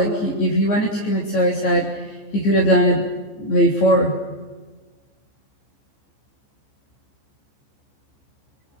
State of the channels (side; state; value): right; late; 14 ms